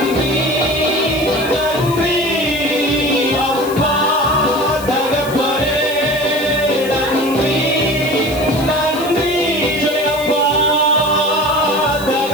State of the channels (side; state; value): left; noise; hiss, 14 dB below the sound